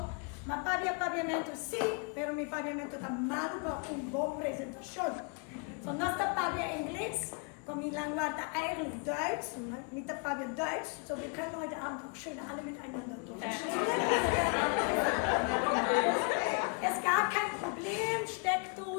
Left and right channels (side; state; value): right; quieter; 36.3 dB